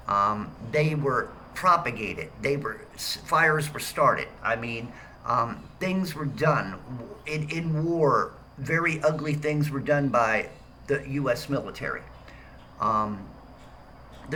They were propagated. Fires were started. I mean, things were done in war. Very ugly things were done by the U.S. military. Um,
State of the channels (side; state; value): both; identical; correlation 1.00